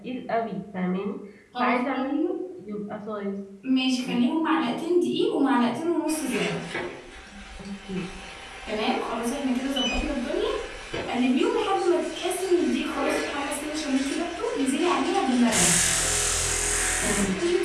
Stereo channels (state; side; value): identical; both; correlation 1.00